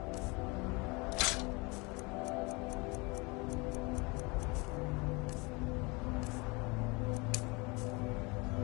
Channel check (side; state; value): right; quieter; 27.6 dB